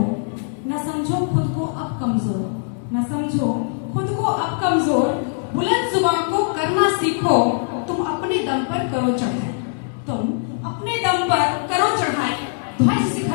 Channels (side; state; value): right; silent; 65 dB below the other